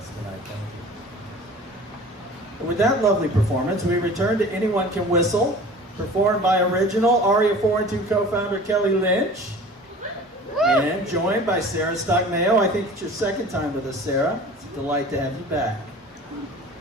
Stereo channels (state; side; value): normal; both; correlation 0.42